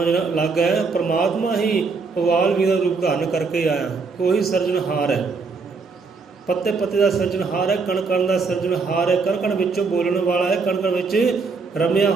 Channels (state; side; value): quieter; left; 4.6 dB